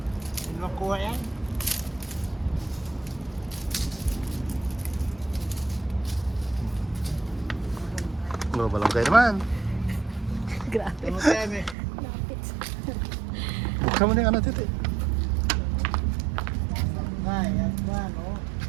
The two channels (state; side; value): drops out; left; at 11.8 s